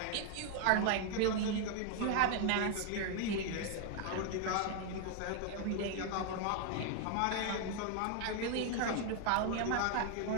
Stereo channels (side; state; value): both; different; correlation 0.00